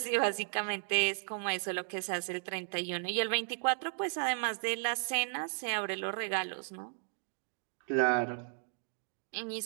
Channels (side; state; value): left; silent; 54 dB below the other